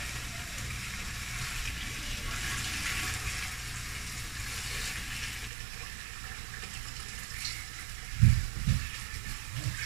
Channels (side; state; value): left; drops out; at 5.5 s